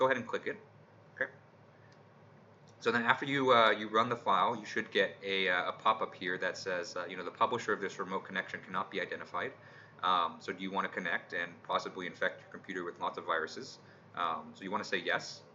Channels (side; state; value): both; identical; correlation 1.00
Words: ahead and click it. Okay. So then after you run the file, you should get a pop-up here that says, the publisher of this remote connection cannot be identified. So do you want to connect and possibly infect your computer with lots of viruses? So you want to say yes,